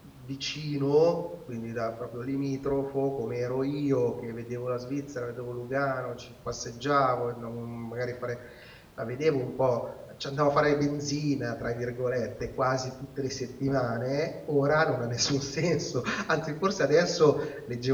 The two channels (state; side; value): identical; both; correlation 1.00